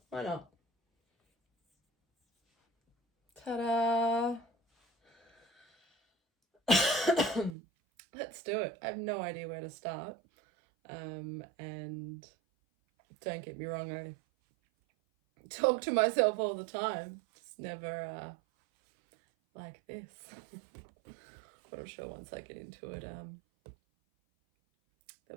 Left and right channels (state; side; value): drops out; left; at 7.6 s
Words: why not? Ta-da! Let's do it. I have no idea where to start. And don't get me wrong, I talk to myself all the time. Just never like this. But I'm sure once I get into it,